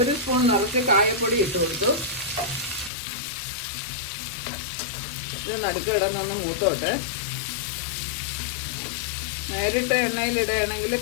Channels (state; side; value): drops out; right; at 2.9 s